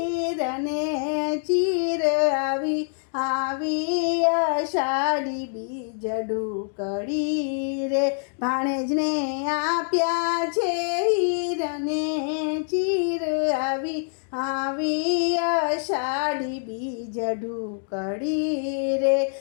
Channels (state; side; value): silent; right; digital silence